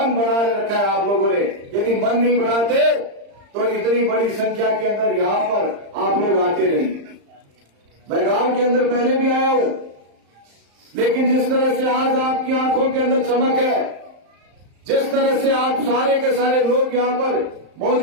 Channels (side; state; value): left; late; 35 ms